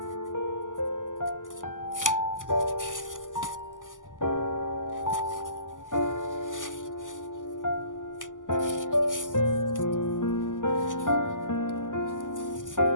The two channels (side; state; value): right; late; 0.88 ms